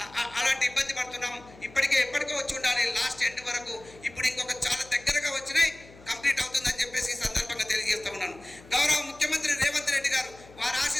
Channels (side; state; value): left; noise; hum, 22 dB below the sound